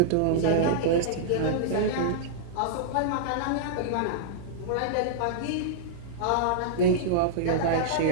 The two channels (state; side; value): different; both; correlation -0.02